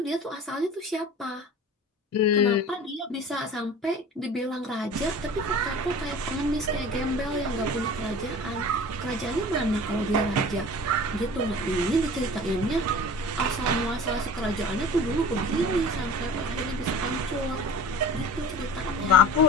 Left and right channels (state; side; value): normal; both; correlation 0.40